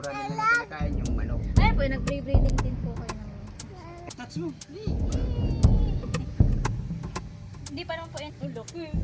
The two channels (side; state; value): both; identical; correlation 1.00